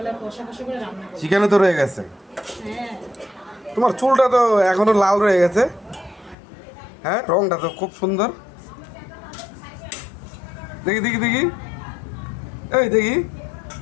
কষা কষা করে রান্না করবো। চিকেনও তো রয়ে গেছে। হ্যাঁ। তোমার চুলটা তো এখনো লাল রয়ে গেছে। হ্যাঁ, রংটা তো খুব সুন্দর। দেখি দেখি দেখি, এই দেখি,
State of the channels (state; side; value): drops out; right; at 6.4 s